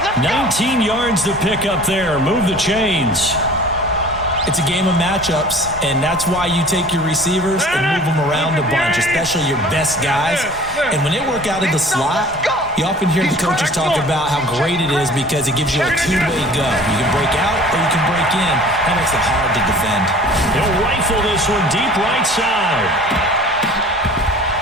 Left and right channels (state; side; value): normal; both; correlation 0.46